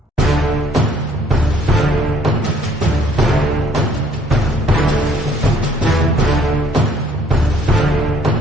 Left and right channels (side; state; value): both; normal; correlation 0.62